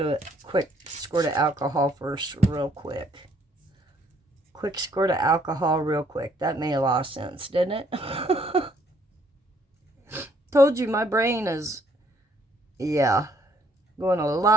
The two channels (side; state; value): both; normal; correlation 0.66